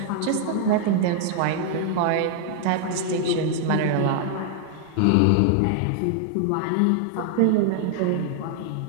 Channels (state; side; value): different; both; correlation 0.00